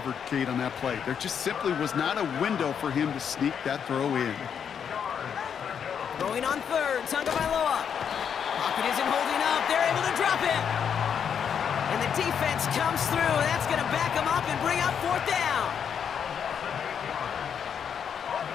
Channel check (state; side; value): quieter; right; 7.7 dB